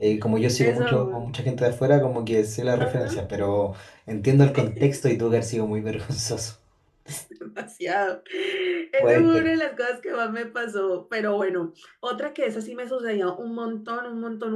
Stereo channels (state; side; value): identical; both; correlation 1.00